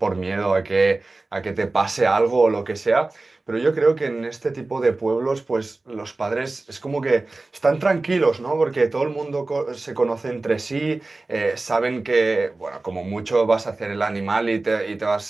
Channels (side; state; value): left; quieter; 3.2 dB